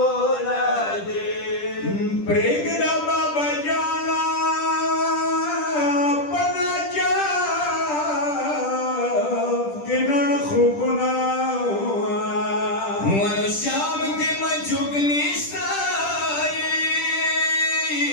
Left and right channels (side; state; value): right; late; 10 ms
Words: न दे प्रेगदा बाबा जाना पना जाफ के न खूब ना हुआ श्याम के मजुग